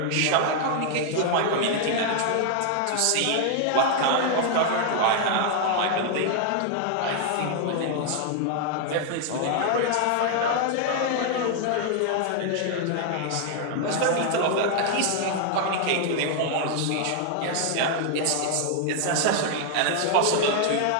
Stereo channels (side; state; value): both; different; correlation 0.00